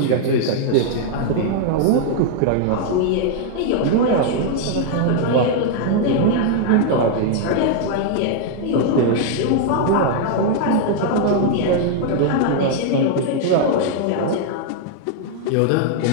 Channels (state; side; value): different; both; correlation -0.01